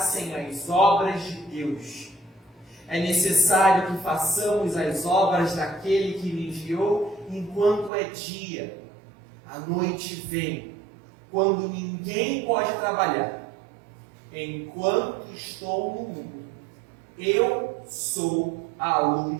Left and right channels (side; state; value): left; drops out; at 7.9 s